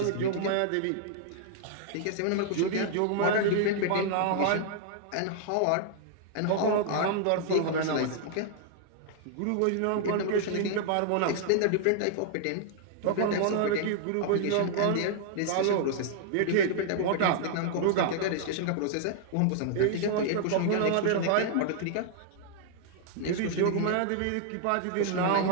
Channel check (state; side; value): different; both; correlation -0.01